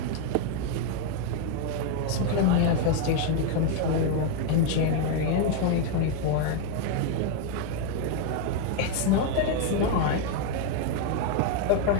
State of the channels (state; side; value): different; both; correlation 0.01